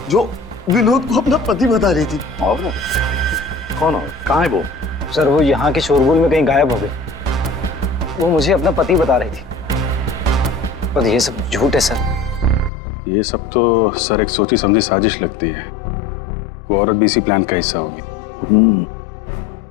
जो विनोद को अपना पति बता रही थी। और कौन और कहाँ है वो? सर वो यहाँ के शोरगुल में कहीं गायब हो गई। वो मुझे अपना पति बता रही थी, पर ये सब झूठ है सर। ये सब तो सर एक सोची समझी साजिश लगती है। वो औरत भी इसी प्लान का हिस्सा होगी।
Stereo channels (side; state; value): right; drops out; at 12.7 s